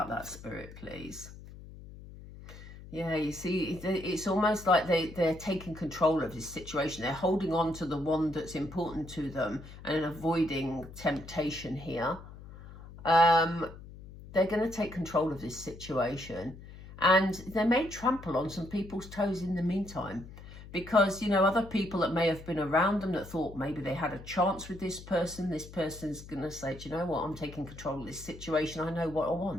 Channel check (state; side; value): noise; left; hum, 16 dB below the sound